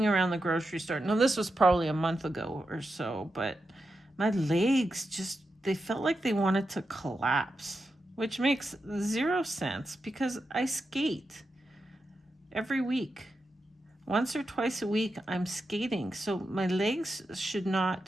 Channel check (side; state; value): both; normal; correlation 0.88